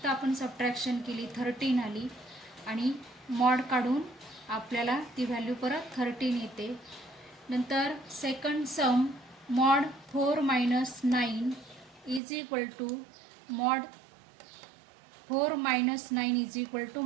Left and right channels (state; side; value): drops out; left; at 12.2 s